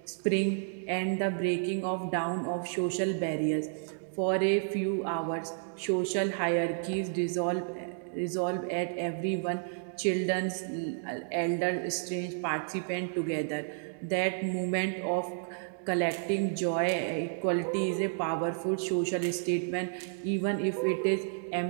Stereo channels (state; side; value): silent; left; digital silence